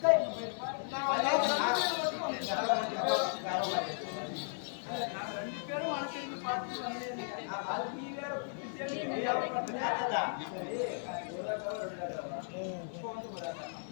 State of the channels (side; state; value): right; silent; 54 dB below the other